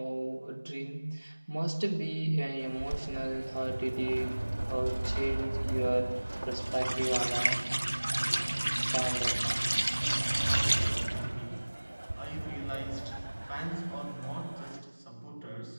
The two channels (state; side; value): inverted; both; correlation -1.00